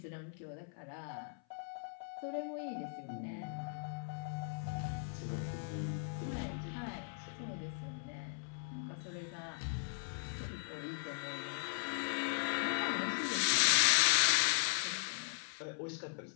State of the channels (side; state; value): right; silent; 52 dB below the other